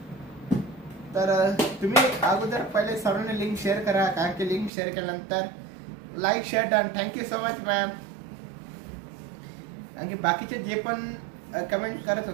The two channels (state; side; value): drops out; left; at 4.7 s